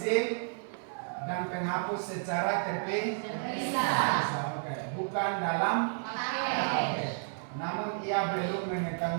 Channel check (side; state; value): left; silent; 57 dB below the other